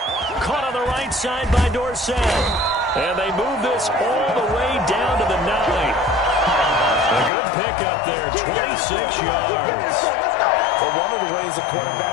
Caught on the right side by Dorsett. And they move this all the way down to the 9. A good pickup there, 26 yards. But one of the ways the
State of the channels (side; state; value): right; drops out; at 7.3 s